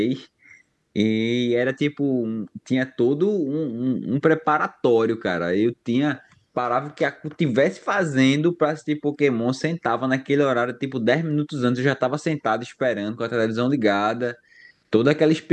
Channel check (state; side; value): identical; both; correlation 1.00